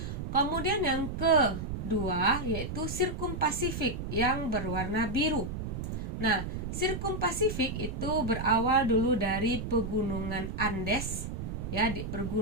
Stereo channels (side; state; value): right; noise; rumble, 5 dB below the sound